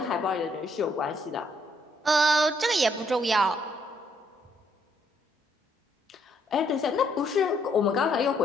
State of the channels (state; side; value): normal; both; correlation 0.70